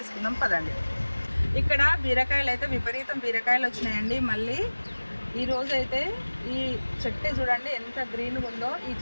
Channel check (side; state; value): both; inverted; correlation -1.00